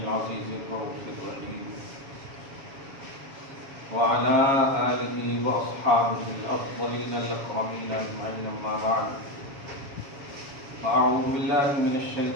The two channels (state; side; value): late; left; 7.2 ms